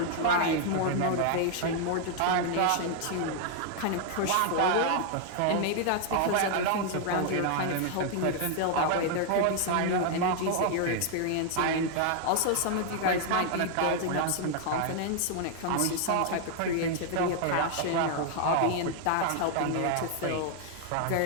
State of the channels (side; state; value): both; different; correlation 0.00